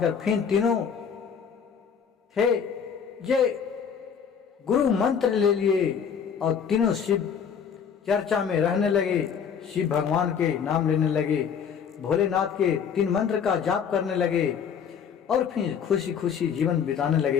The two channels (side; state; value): right; quieter; 7.2 dB